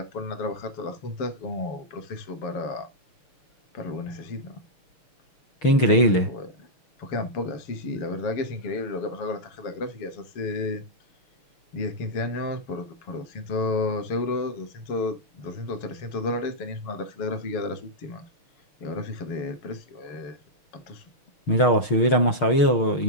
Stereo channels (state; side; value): late; right; 6.5 ms